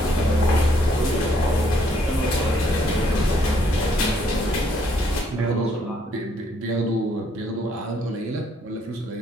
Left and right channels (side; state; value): both; normal; correlation 0.69